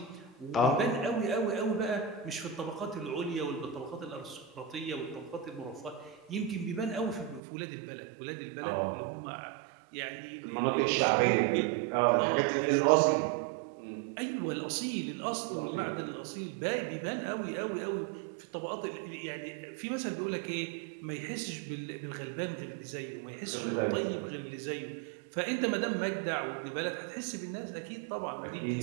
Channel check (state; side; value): drops out; left; at 7.4 s